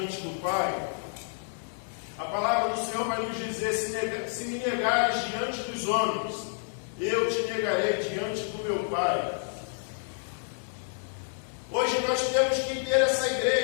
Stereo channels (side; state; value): right; silent; digital silence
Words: do Pai. A palavra do Senhor vai nos dizer: se me negares diante dos homens, eu te negarei diante do meu Pai. Hoje nós temos que ter essa